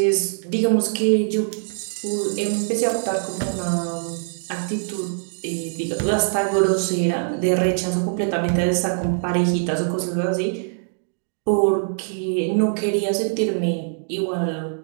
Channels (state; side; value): silent; left; digital silence